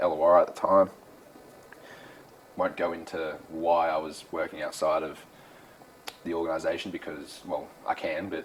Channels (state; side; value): identical; both; correlation 1.00